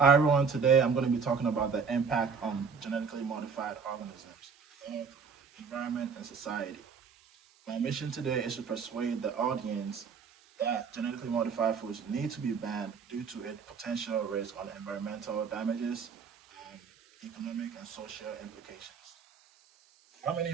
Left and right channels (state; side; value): quieter; left; 5.8 dB